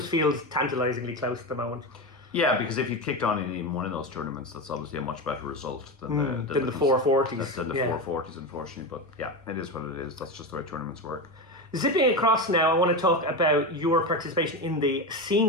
feels tantalizingly close at the moment. Yeah, because if you kicked on in even one of those tournaments, that's obviously a much better result than the 440s. Than the 440s, unfortunately. But yeah, it is what it is. That's just the way tournaments work. Zipping across now, I want to talk about your participation in the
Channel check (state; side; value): normal; both; correlation 0.19